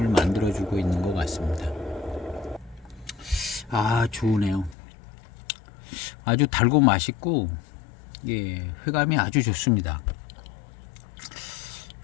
만들어주고 있는 것 같습니다. 아, 좋으네요. 아주 달고 맛있고 예, 회감이 아주 좋습니다.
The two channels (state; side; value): drops out; right; at 4.8 s